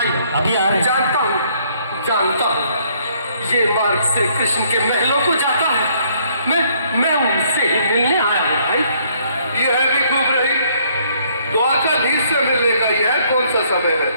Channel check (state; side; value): inverted; both; correlation -0.66